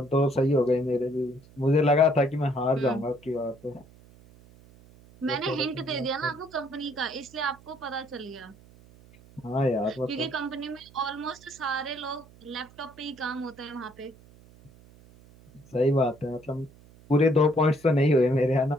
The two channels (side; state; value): right; noise; hum, 24 dB below the sound